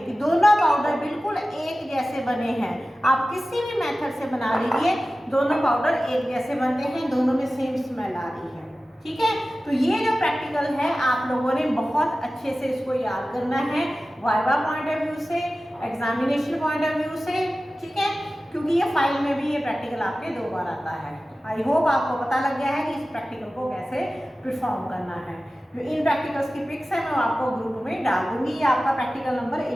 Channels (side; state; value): both; normal; correlation 0.95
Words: कि दोनों पाउडर बिल्कुल एक जैसे बने हैं। आप किसी भी मेथड से बना लीजिए, दोनों पाउडर एक जैसे बनते हैं, दोनों में सेम स्मेल आ रही है। ठीक है, तो ये जो प्रैक्टिकल है आप लोगों ने बहुत अच्छे से इसको याद करना है, वाइवा पॉइंट ऑफ व्यू से, एग्जामिनेशन पॉइंट ऑफ व्यू से। ठीक है, क्योंकि ये फाइल में भी ये प्रैक्टिकल आपके 2 बार आता है। आई होप आपको पता लग गया है कि इस प्रैक्टिकल को कैसे परफॉर्म करना है। जो इन प्रैक्टिकल्स की पिक्स है मैं आपको ग्रुप में डाल दूंगी। ये आपका प्रैक्टिकल नंबर